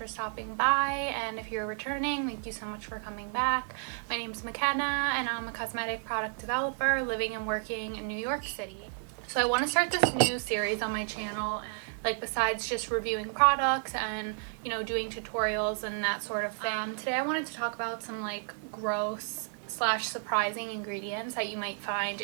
stopping by, and if you're returning, thank you so much for coming back. My name's McKenna and I'm a cosmetic product developer living and working in New York City. So I want to start this new series on my channel, like besides just reviewing products and doing tutorials and that sort of thing. Today I wanted to talk about some like gross / surprising ingredients that you might find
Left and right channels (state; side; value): silent; left; 57 dB below the other